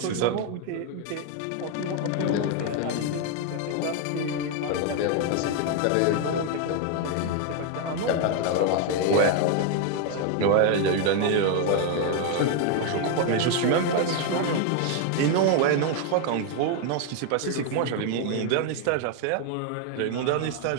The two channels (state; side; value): different; both; correlation 0.01